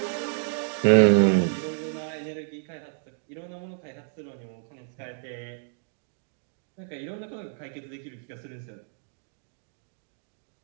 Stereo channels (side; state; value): left; silent; digital silence